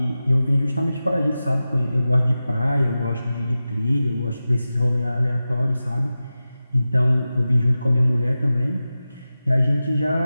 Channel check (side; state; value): both; inverted; correlation -0.94